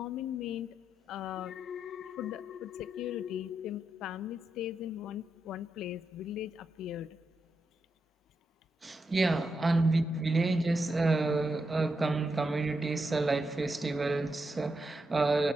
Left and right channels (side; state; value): both; normal; correlation 0.85